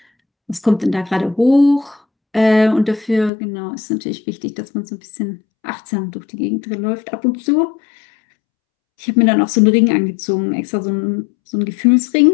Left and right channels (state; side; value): drops out; right; at 3.3 s